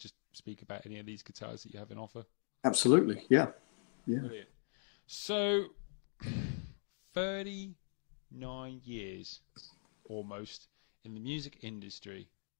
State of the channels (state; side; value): silent; right; digital silence